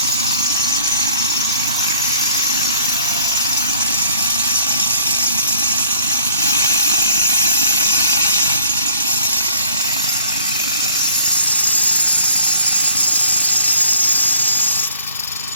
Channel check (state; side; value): inverted; both; correlation -0.55